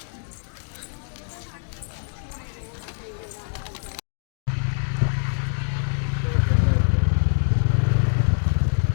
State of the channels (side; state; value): right; silent; 62 dB below the other